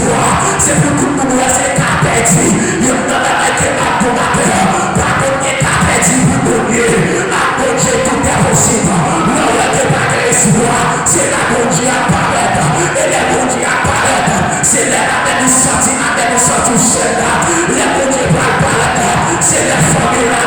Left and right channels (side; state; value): both; identical; correlation 1.00